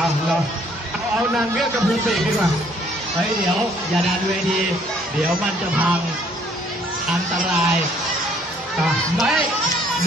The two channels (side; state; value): both; normal; correlation 0.62